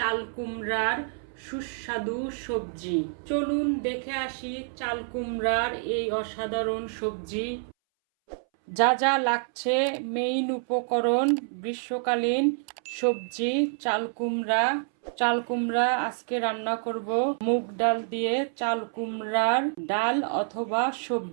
কুমড়ার সুস্বাদু সবজি। চলুন দেখে আসি চাল কুমড়ার এই অসাধারণ সবজি। যা যা লাগছে মেইন উপকরণ: গ্রীষ্মকালীন সবজি চাল কুমড়া। চাল কুমড়া আজকে রান্না করব মুগ ডাল দিয়ে। চাল কুমড়ার ডাল অথবা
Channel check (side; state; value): left; silent; 60 dB below the other